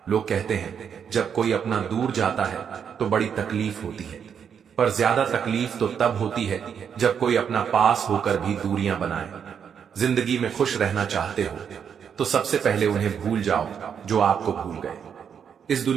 लोग कहते हैं जब कोई अपना दूर जाता है तो बड़ी तकलीफ होती है, पर ज्यादा तकलीफ तो तब होती है जब कोई अपना पास होकर भी दूरियां बनाए। जिंदगी में खुश रहना चाहते हो तो सबसे पहले उन्हें भूल जाओ जो आपको भूल गए। इस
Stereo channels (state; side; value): quieter; left; 7.5 dB